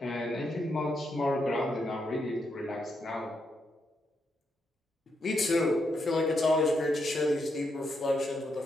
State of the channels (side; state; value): both; normal; correlation 0.80